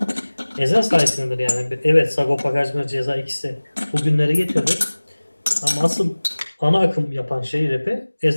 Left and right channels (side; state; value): both; inverted; correlation -1.00